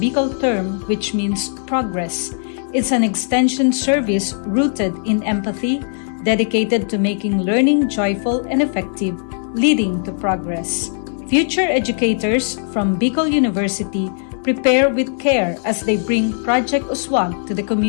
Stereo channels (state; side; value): silent; right; digital silence